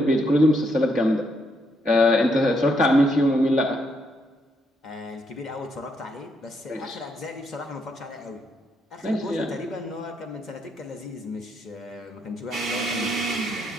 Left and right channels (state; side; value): normal; both; correlation 0.76